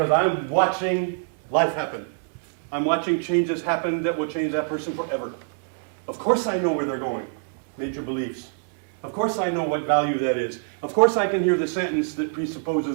I'm watching life happen. I'm watching changes happen that will change that person forever. Of course I know where they're going. Major beliefs. Of course I know what value that is. Of course I can hear the sentence that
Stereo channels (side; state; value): left; silent; digital silence